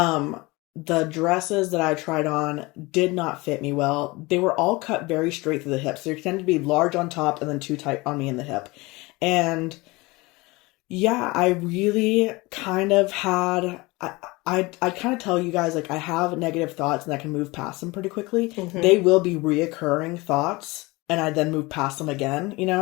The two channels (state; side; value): quieter; right; 23.3 dB